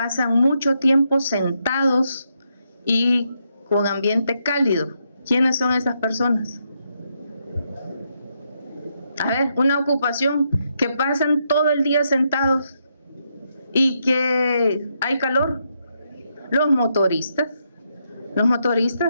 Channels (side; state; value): both; inverted; correlation -0.80